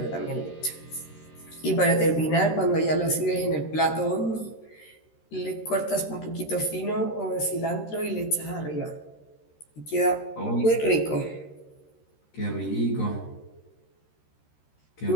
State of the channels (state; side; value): late; right; 13 ms